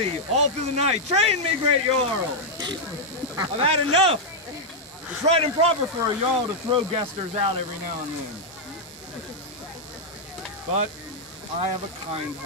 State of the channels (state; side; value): normal; both; correlation -0.03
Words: all through the night. Train me, great Jarl! I've had enough! It's right and proper for a Jarl to throw guesters out every now and then. But I have a kind